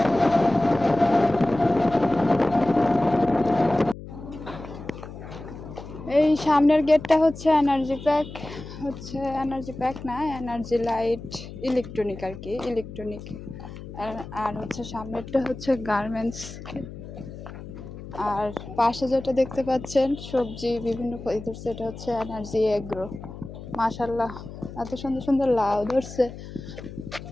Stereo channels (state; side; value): noise; left; hum, 13 dB below the sound